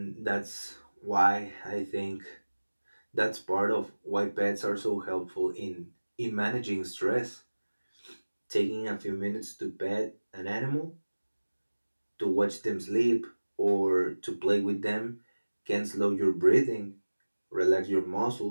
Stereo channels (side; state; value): both; inverted; correlation -1.00